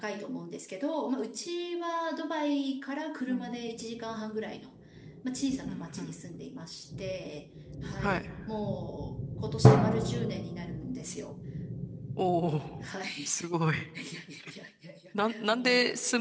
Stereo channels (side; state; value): both; identical; correlation 1.00